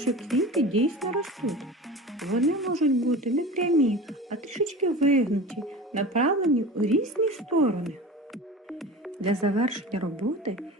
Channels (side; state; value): both; normal; correlation 0.34